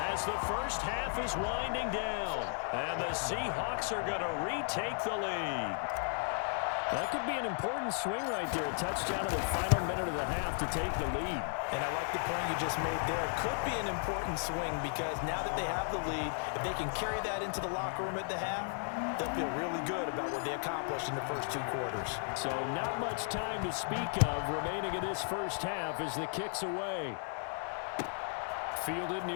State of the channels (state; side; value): silent; right; 54 dB below the other